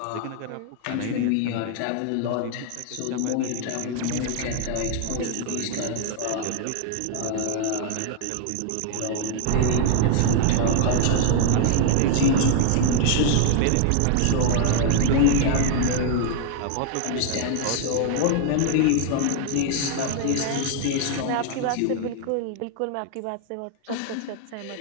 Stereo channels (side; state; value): both; different; correlation 0.00